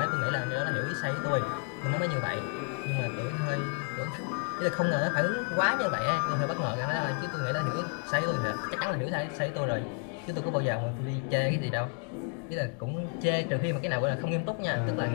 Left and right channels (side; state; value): right; quieter; 39.7 dB